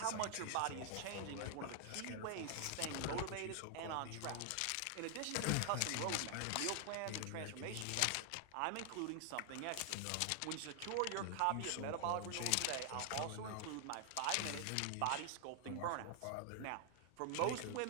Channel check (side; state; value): both; different; correlation 0.00